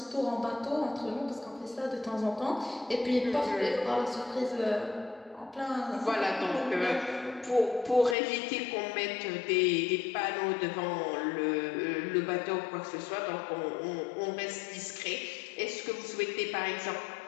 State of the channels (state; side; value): drops out; right; at 8.2 s